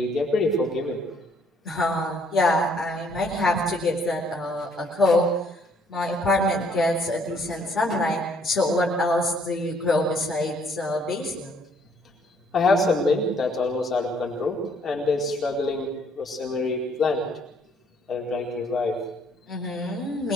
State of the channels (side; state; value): both; normal; correlation 0.65